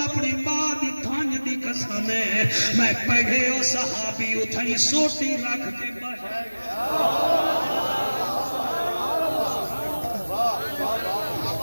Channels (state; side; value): inverted; both; correlation -1.00